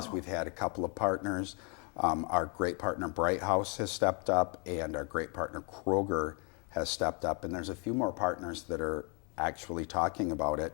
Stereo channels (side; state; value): right; quieter; 34.9 dB